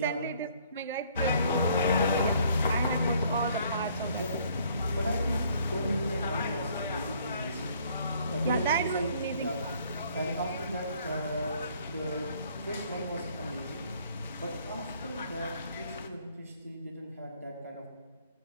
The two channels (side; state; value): both; inverted; correlation -0.61